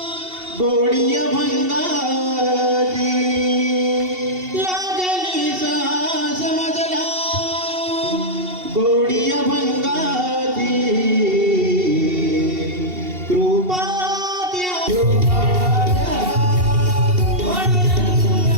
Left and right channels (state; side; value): late; left; 2.7 ms